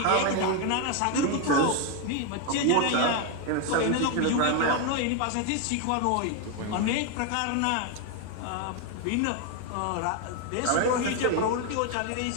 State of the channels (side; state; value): both; different; correlation 0.01